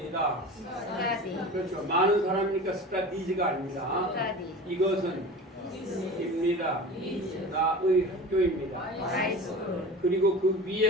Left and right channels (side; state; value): both; normal; correlation 0.35